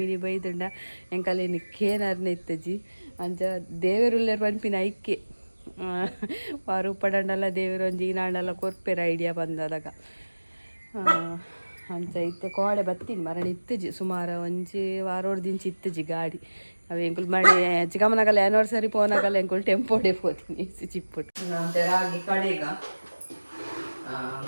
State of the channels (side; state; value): both; inverted; correlation -1.00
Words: ಬೈದುಂಡ ಎಂಕಲ್ಲಿ ನಿಕ್ಕೇನರ್ನ ಇತ್ತಜಿ ಅಂಚ ದೇವರುಲ್ಲೇರು ಪನ್ಪಿನ ಐಕ್ಕೆ ವಾರು ಉಪ್ಪಡಂಡಲ್ಲ ದೇವರು ಒಂಜಿ ಈನಾಂಡಲ್ಲ ಕೊರ್ಪೆರ ಐಡಿಯಾ ಬಂದದಾಗ ಅಂಚ ಇತ್ತೆ ಕೋಡೆ ಬತ್ತೀನಿ ಮರಣ ಇತ್ತಜಿ ಸುಮಾರು ಒಂಜಿ ವಾರೋಡ್ದಿಂಚಿ ಇತ್ತಜಿ ಗಾಡಿ ಅವು ಎಂಕುಲು ಮಣಿ ಚಿಕ್ಕಮ್ಮನಾಗಲ್ಲ ಆ್ಯನಿವರ್ಸರಿ ಪೋನಾಗಲ್ಲ ಎಂಕುಲು ಟೆಂಪೋಡೆ ಪೋತೀನಿ ಚಿಪ್ಪುಟ್ಟು ರಾಗಿ ಕಡೆಗ